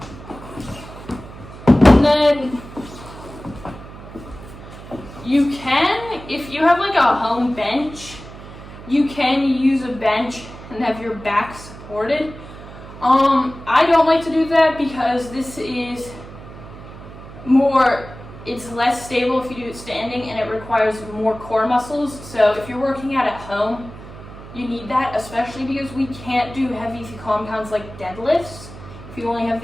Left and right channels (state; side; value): noise; right; hum, 15 dB below the sound